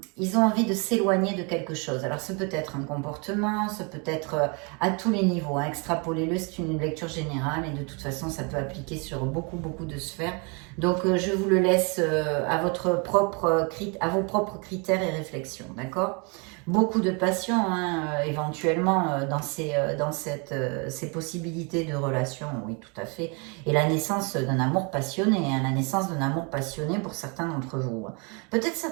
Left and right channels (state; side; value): quieter; left; 33.0 dB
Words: ils ont envie de s'éloigner de quelque chose. Alors ça peut être un comportement, ça peut être à tous les niveaux. Hein. Extrapolez-le, c'est une lecture générale et de toute façon ça peut appliquer sur beaucoup de sphères. Donc je vous le laisse à vos propres critères et réflexions, d'accord? Beaucoup de passion, hein, éventuellement, dans ces possibilités de relation, oui, tout à fait. Et la naissance d'un amour passionné, hein, la naissance d'un amour passionné pour certains d'entre vous. Peut-être